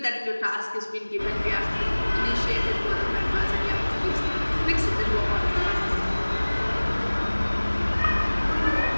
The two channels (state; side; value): inverted; both; correlation -1.00